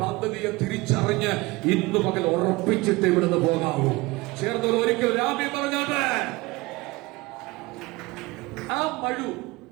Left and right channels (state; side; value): quieter; left; 22.1 dB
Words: പദ്ധതിയെ തിരിച്ചറിഞ്ഞ് ഇന്ന് പകൽ ഉറപ്പിച്ചിട്ട് ഇവിടുന്ന് പോകാവൂ. ചേർന്നവർ ഒരിക്കൽ രാമി പറഞ്ഞത്. ആ മഴു